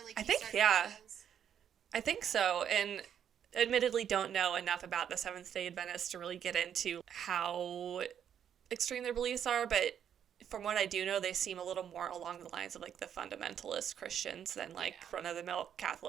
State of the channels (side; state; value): left; quieter; 8.9 dB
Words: like I think, yeah. I think so. And admittedly don't know enough about the Seventh-day Adventists to really get into how extreme their beliefs are, but from what I do know, they seem a little more along the lines of like the fundamentalist Christians than like run-of-the-mill